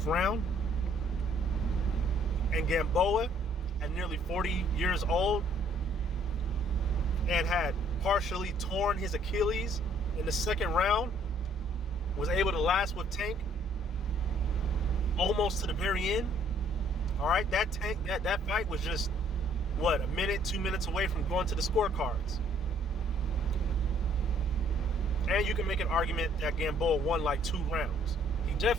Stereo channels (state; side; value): normal; both; correlation 0.62